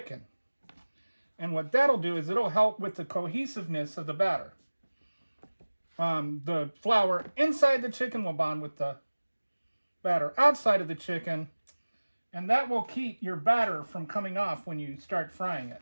And what that'll do is it'll help with the cohesiveness of the batter. The flour inside the chicken will bond with the batter outside of the chicken, And that will keep your batter from coming off when you start frying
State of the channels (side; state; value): both; inverted; correlation -1.00